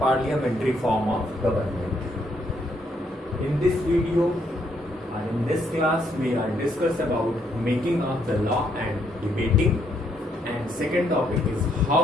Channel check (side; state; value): both; normal; correlation 0.73